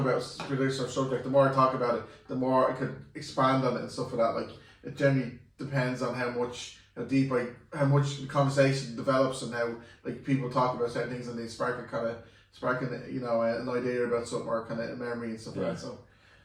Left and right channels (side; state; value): both; identical; correlation 1.00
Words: a particular subject. The more I talk about it, the more I could expand on it and stuff like that. Like it generally depends on how much the conversation develops and how like people talk about certain things and they sparking an idea about something or kind of a memory and stuff like that. So,